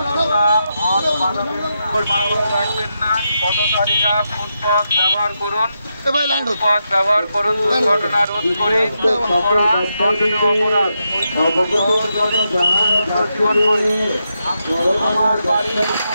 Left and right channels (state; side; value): inverted; both; correlation -0.85